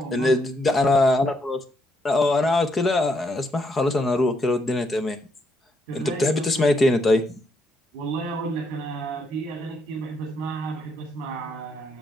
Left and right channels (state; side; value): normal; both; correlation 0.76